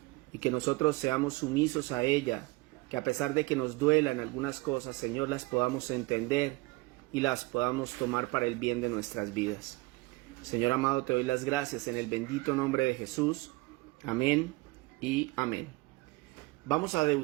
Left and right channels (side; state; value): left; quieter; 23.2 dB